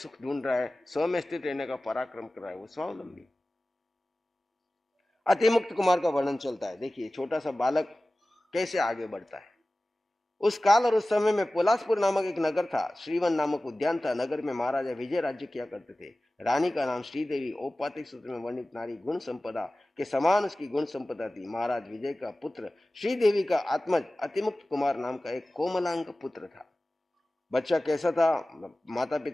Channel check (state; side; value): normal; both; correlation 0.97